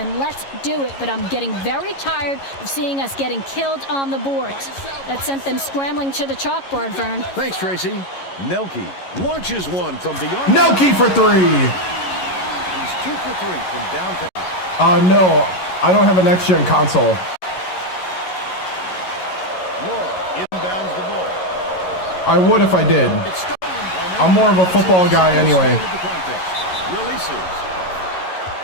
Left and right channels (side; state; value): right; late; 11 ms